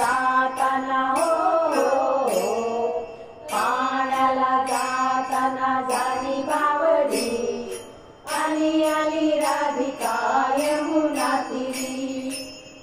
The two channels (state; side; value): identical; both; correlation 1.00